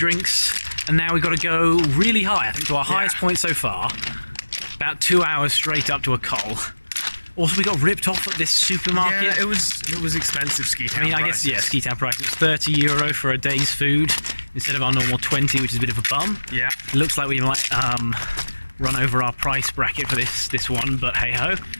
and now we've got to go really high, I think to our highest point so far. About 2 hours straight up to a col. Also, we got ripped off at this supermarket. Yeah, it was expensive ski town. I mean, I guess, yeah, ski town price. It's €30 for a day's food instead of our normal 20, which is a bit of a bum. Yeah. It looks like we might run over our price bracket for this one, but hey ho.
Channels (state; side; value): inverted; both; correlation -1.00